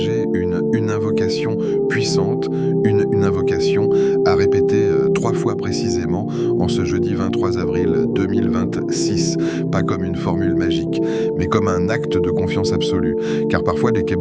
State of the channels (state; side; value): identical; both; correlation 1.00